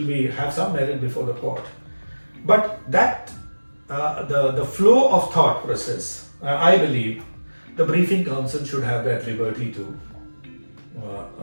have some merit before the court. But that the flow of thought process, I believe the briefing counsel should have that liberty to,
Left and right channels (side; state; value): both; inverted; correlation -1.00